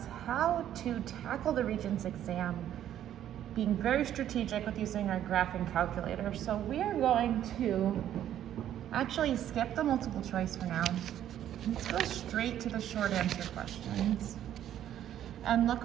how to tackle the Regents exam, being very strategic with using our graphing calculator. So we are going to actually skip the multiple choice for now. Let's go straight to the short answer questions and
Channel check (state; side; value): quieter; left; 11.1 dB